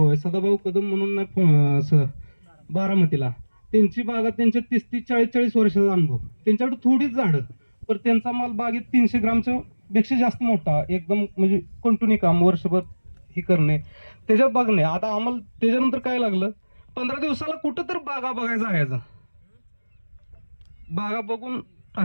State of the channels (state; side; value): inverted; both; correlation -1.00